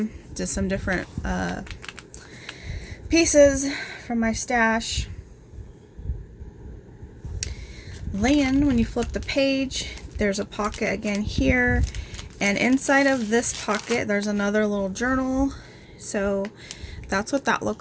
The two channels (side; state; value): both; identical; correlation 1.00